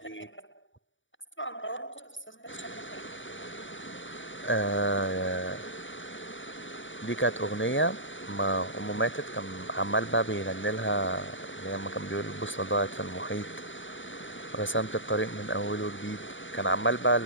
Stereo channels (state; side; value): late; right; 0.56 ms